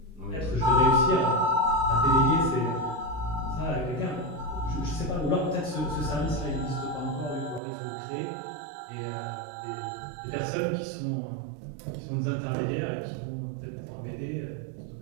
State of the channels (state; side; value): drops out; left; at 7.6 s